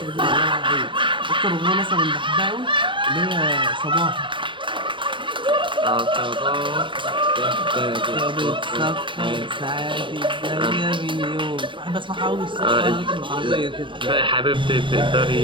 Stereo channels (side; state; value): left; late; 0.24 ms